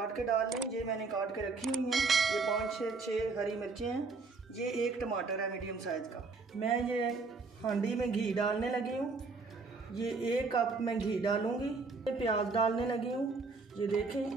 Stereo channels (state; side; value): quieter; left; 4.2 dB